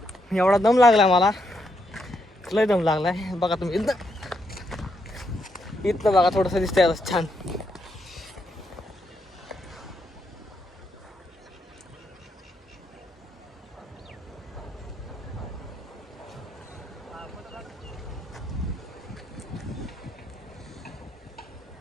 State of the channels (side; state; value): both; normal; correlation 0.78